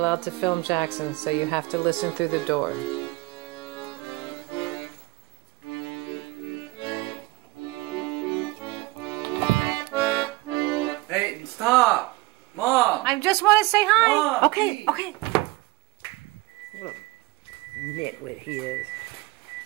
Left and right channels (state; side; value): quieter; left; 21.6 dB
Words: to film Jackson, so you have to listen through the door. Hey, stop! Mom! I just want to say hi. Mom, okay, please. okay. What a nitwit he is.